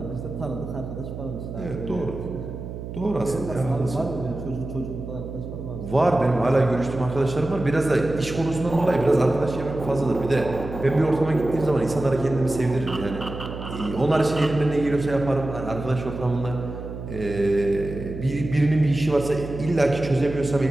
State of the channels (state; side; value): noise; right; hum, 9 dB below the sound